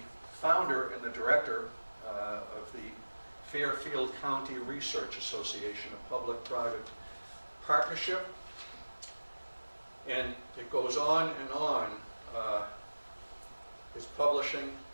founder and the director of the Fairfield County Research Association, a public-private partnership. And it goes on and on. His publishing,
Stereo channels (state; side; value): inverted; both; correlation -1.00